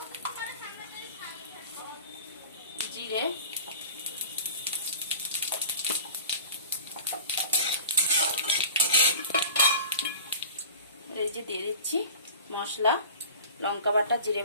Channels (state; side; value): inverted; both; correlation -0.39